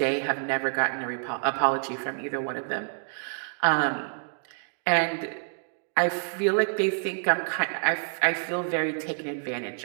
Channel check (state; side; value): silent; left; digital silence